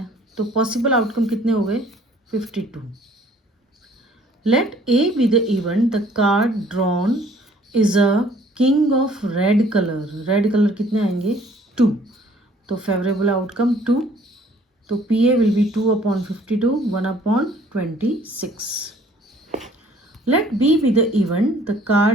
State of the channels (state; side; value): normal; both; correlation 0.57